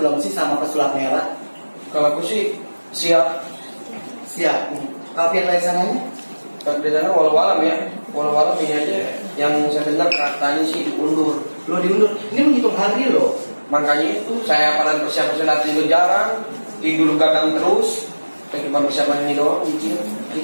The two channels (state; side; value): inverted; both; correlation -1.00